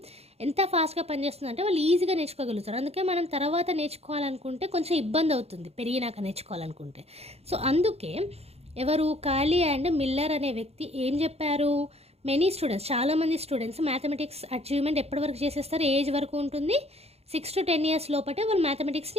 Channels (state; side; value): late; left; 0.30 ms